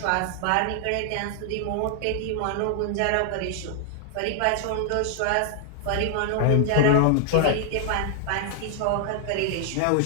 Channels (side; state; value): both; different; correlation 0.00